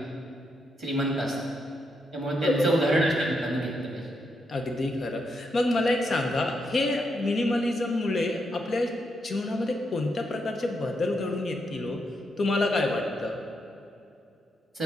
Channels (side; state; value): both; normal; correlation 0.81